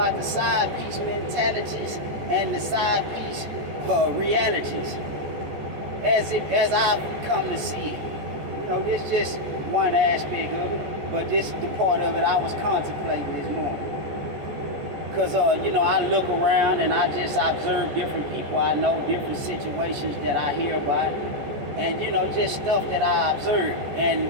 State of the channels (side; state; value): left; late; 14 ms